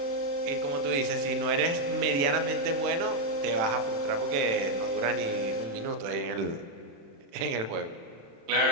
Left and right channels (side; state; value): left; late; 36 ms